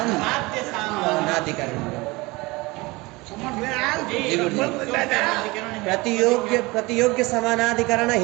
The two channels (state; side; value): quieter; left; 23.2 dB